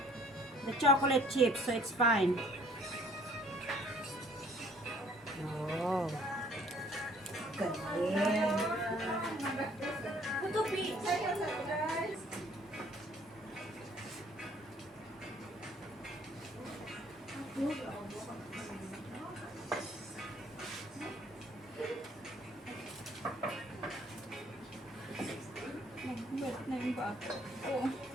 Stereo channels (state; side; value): normal; both; correlation 0.58